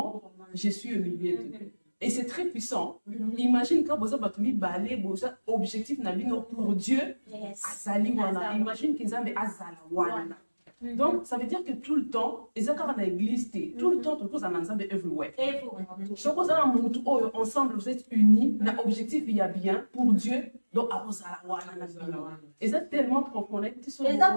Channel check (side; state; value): both; inverted; correlation -1.00